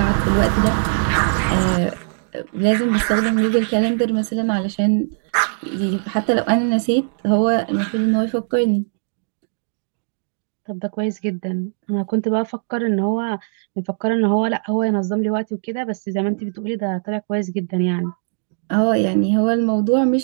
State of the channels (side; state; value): left; silent; digital silence